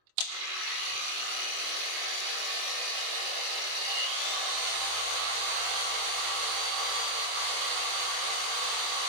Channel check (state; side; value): late; left; 24 ms